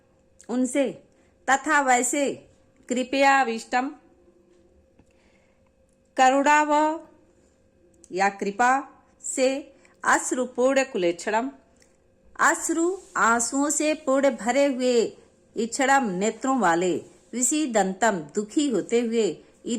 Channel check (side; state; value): both; identical; correlation 1.00